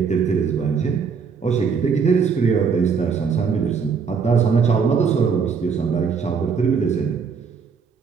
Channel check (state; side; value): quieter; left; 5.9 dB